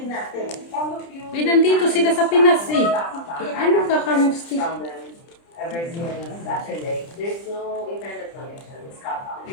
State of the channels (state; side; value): late; right; 30 ms